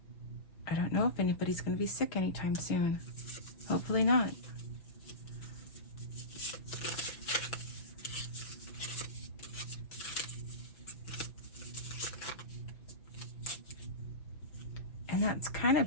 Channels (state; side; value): late; right; 6.0 ms